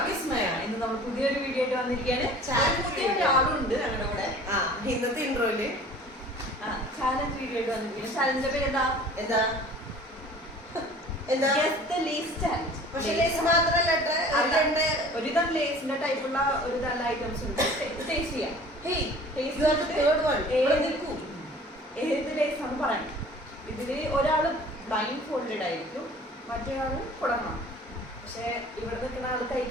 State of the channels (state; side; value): normal; both; correlation 0.46